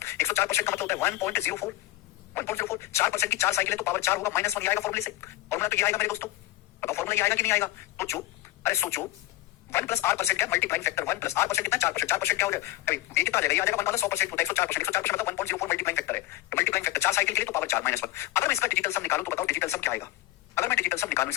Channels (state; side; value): quieter; right; 16.6 dB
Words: 104% का मतलब होता है 1.04, 1.04। 4% की 4 साइकिल है तो पावर 4 होगा, -1 आएगा फॉर्मूले से। फॉर्मूला तो ये आएगा मेरे दोस्तों, बताओ फॉर्मूला ये आएगा कि नहीं आएगा? सोचो, अरे सोचो, 1+r% क्या मल्टीप्लाइंग फैक्टर 1+r% कितना 4%, 4% क्या हो जाएगा अभी ये कितना आ जाएगा, ये आ जाएगा 1 100% होता है 104%, 104% मतलब 1.04 मल्टीप्लाइंग फैक्टर है, मल्टीप्लाइंग फैक्टर 4 साइकिल के लिए तो पावर 4 -1। अगर मैं इसका डिजिटल सम निकालूं तो बताओ डिजिटल सम क्या आएगा, अगर मैं डिजिटल सम निकालूं